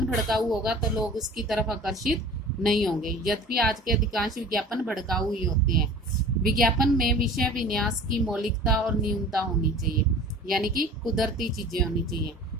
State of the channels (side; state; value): both; normal; correlation 0.42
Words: भड़काऊ होगा तो लोग उसकी तरफ आकर्षित नहीं होंगे, यद्यपि आज के अधिकांश विज्ञापन भड़काऊ ही होते हैं। विज्ञापन में विषय विन्यास की मौलिकता और न्यूनता होनी चाहिए, यानी कि कुदरती चीजें होनी चाहिए।